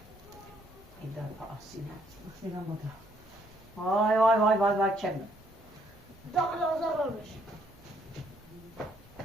این دار آسینه آسینه بوده وای وای وای وای وای چه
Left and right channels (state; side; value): normal; both; correlation 0.68